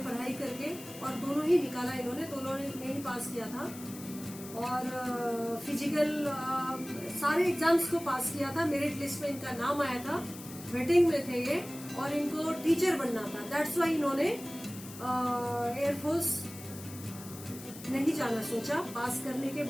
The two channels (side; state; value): left; noise; hiss, 15 dB below the sound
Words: पढ़ाई करके, और दोनों ही निकाला इन्होंने, दोनों ने ही पास किया था। और फिजिकल सारे एग्जाम्स को पास किया था। मेरिट लिस्ट में इनका नाम आया था, वेटिंग में थे ये, और इनको टीचर बनना था। दैट्स वाई इन्होंने एयरफोर्स नहीं जाना सोचा। पास करने के